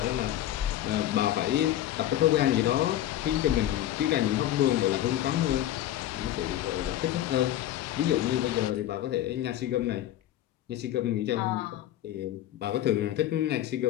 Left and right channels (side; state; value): right; quieter; 12.9 dB